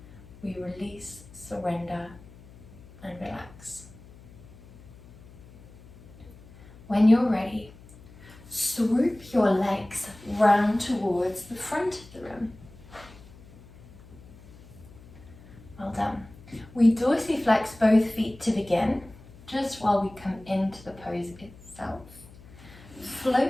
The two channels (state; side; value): noise; left; hum, 21 dB below the sound